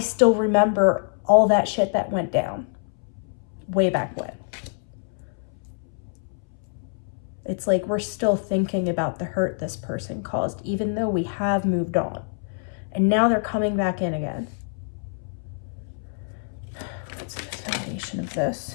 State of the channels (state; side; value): silent; right; 61 dB below the other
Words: remember all that shit that went down way back when. It's like we're still thinking about the hurt this person caused, even though we have moved on. And now they're coming back in again. What's the foundation of this?